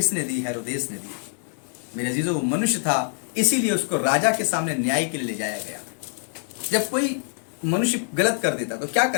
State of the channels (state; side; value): silent; right; 59 dB below the other